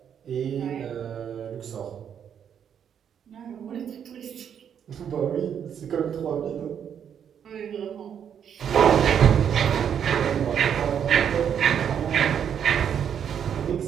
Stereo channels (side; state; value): left; quieter; 8.4 dB